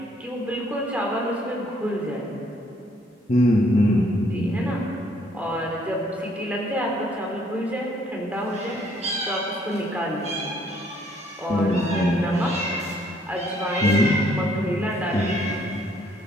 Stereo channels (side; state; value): both; normal; correlation 0.65